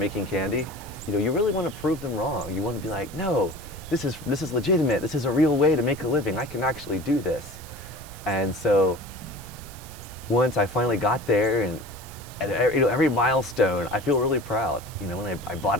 candy. You really want to prove them wrong. You want to be like, no, this is legitimate. This is a real way to make a living. I can actually do this. And so once I finally got there, and every milestone, I feel really proud. When I bought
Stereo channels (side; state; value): right; noise; hiss, 18 dB below the sound